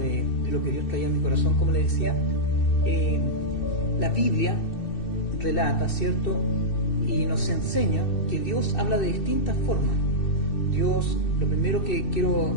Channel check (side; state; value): right; late; 2.6 ms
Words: lo que Dios traía a mi corazón. Como les decía, la Biblia relata, ¿cierto? Y nos enseña que Dios habla de distintas formas. Dios, lo primero que quiero